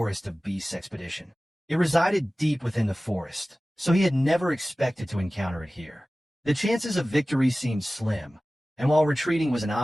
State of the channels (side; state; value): both; normal; correlation 0.97